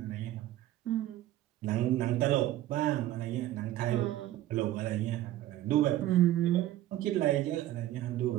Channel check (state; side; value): quieter; left; 14.0 dB